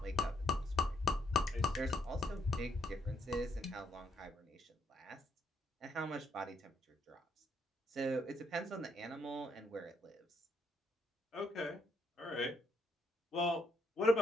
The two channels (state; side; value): normal; both; correlation 0.72